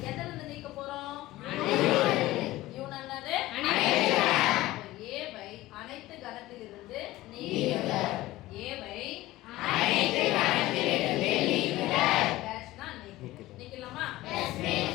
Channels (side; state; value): right; quieter; 17.0 dB